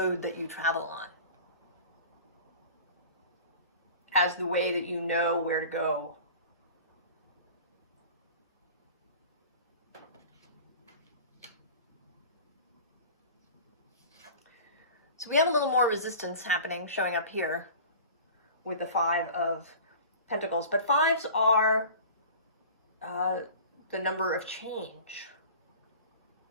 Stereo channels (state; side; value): inverted; both; correlation -0.40